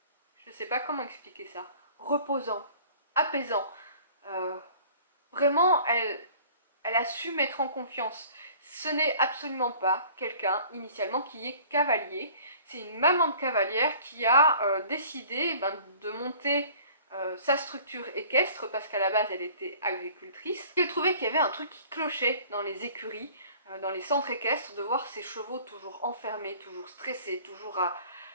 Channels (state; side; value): inverted; both; correlation -0.49